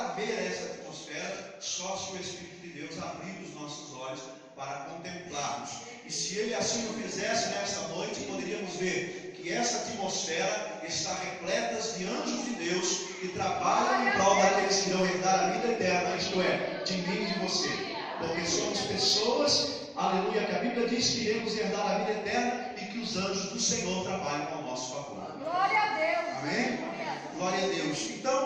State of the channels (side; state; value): both; identical; correlation 1.00